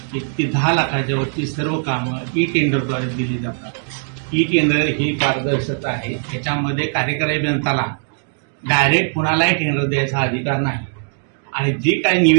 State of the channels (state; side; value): silent; left; 56 dB below the other